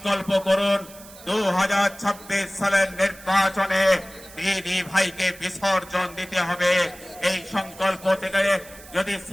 করুন 2026 সালের নির্বাচনে দিদি ভাইকে বিসর্জন দিতে হবে। এই সংকল্প থেকে যদি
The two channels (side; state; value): right; noise; hiss, 19 dB below the sound